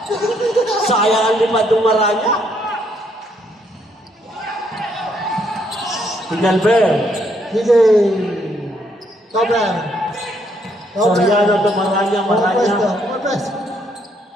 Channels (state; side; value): normal; both; correlation 0.71